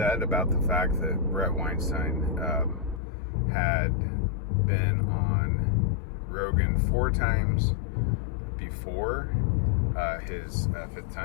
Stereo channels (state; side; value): drops out; right; at 3.0 s